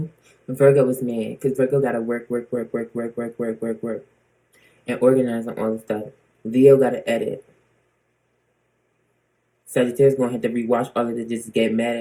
Virgo is mad because Virgo got to work, and organize on all the stuff. Leo got to edit. Sagittarius gonna have to rewatch all of it, just get mad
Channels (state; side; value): identical; both; correlation 1.00